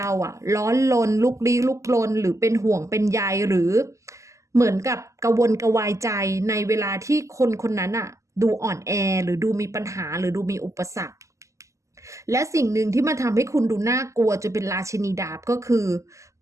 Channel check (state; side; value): late; left; 0.15 ms